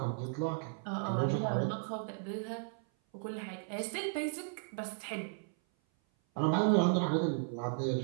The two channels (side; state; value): left; silent; 54 dB below the other